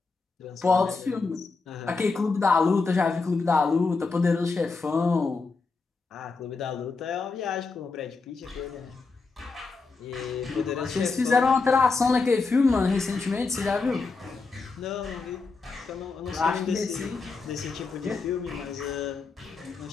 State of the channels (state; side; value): quieter; right; 4.2 dB